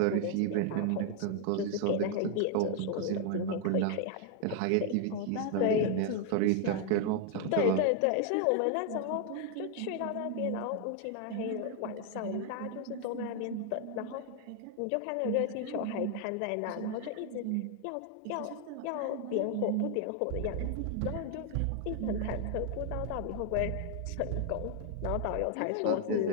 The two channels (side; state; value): both; different; correlation 0.00